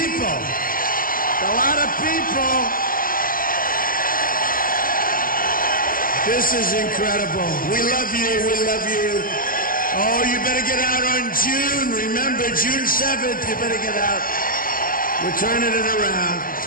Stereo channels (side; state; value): right; late; 0.41 ms